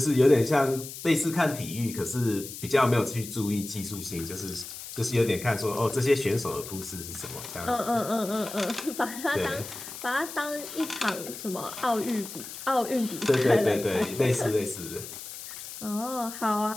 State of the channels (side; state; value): left; noise; hiss, 11 dB below the sound